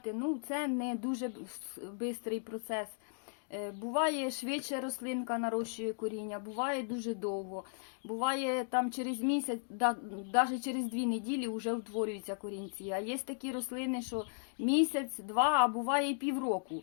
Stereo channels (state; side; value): silent; right; digital silence